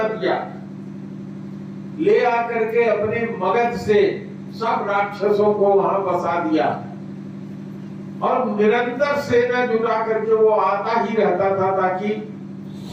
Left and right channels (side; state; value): both; identical; correlation 1.00